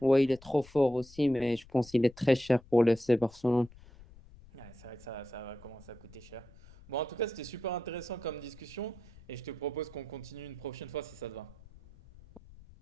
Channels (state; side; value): noise; left; rumble, 22 dB below the sound